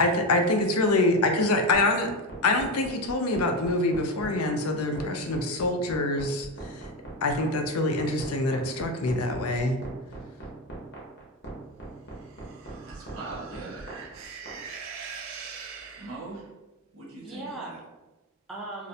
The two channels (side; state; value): both; normal; correlation 0.15